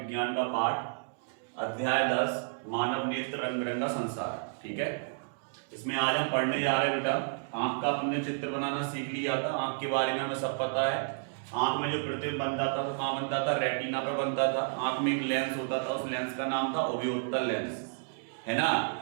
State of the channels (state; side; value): silent; left; digital silence